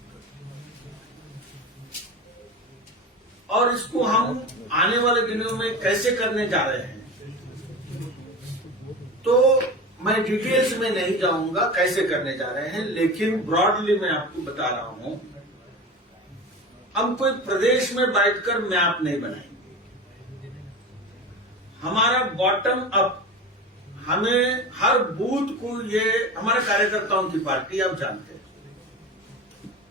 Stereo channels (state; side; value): normal; both; correlation 0.28